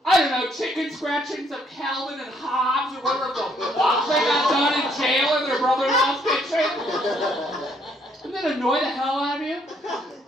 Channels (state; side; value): normal; both; correlation 0.68